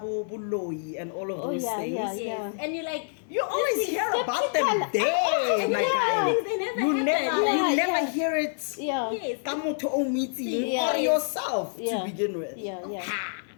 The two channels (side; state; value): right; silent; 60 dB below the other